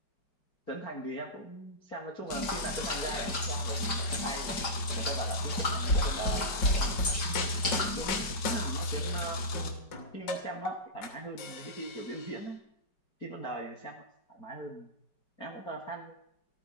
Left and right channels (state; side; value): late; right; 5.0 ms